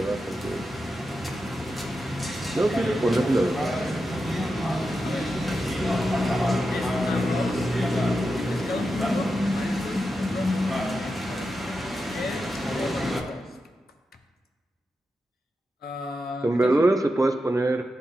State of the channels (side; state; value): both; normal; correlation 0.89